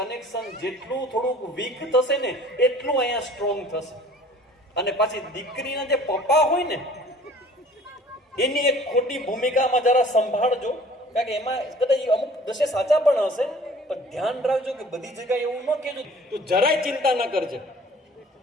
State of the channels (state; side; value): normal; both; correlation 0.50